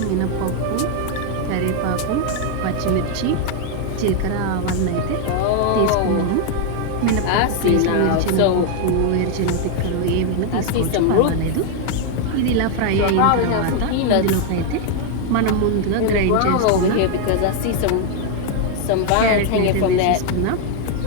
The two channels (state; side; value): different; both; correlation 0.00